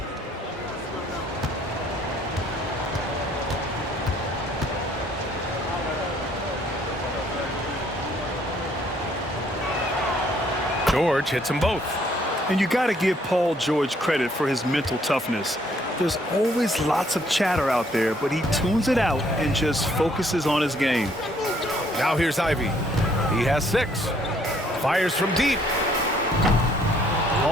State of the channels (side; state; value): both; normal; correlation 0.65